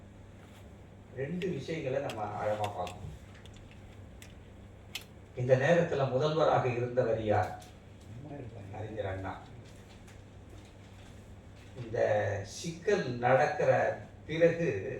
2 விஷயங்களை நம்ம ஆழமா பார்க்கணும். இந்த நேரத்தில் முதல்வராக இருந்தவர் யார்? அறிஞர் அண்ணா. இந்த சிக்கல் நடக்கிற பிறகு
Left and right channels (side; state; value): both; identical; correlation 1.00